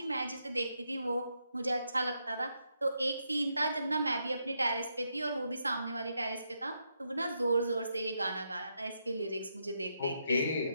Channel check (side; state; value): both; inverted; correlation -0.81